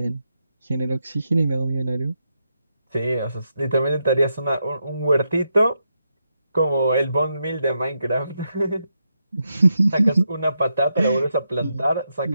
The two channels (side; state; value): both; inverted; correlation -0.83